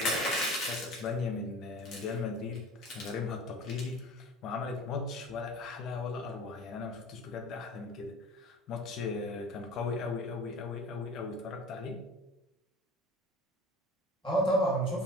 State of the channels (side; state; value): both; normal; correlation 0.40